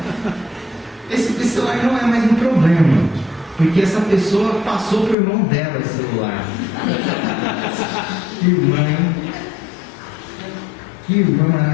Esse celular não é mais um problema, porque essa pessoa passou por mão dela esse celular. Que irmã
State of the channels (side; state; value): right; drops out; at 5.2 s